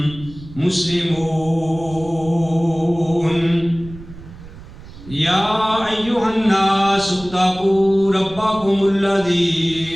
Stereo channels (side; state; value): right; noise; rumble, 17 dB below the sound